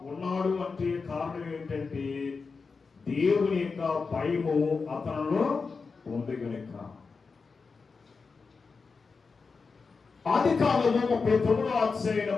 ఉన్నాడు. అంటే కారణం ఏంటంటే దేవుని యొక్క భయము అతనిలో ఉంది కనుక. ఆదికాండము 39వ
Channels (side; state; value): right; quieter; 4.7 dB